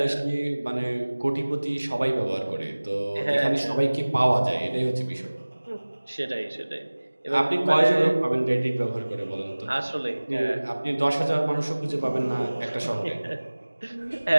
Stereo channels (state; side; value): inverted; both; correlation -1.00